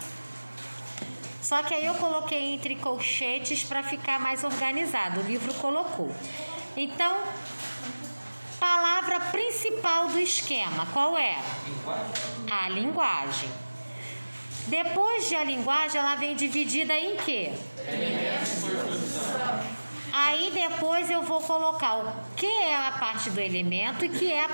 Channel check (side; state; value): both; inverted; correlation -1.00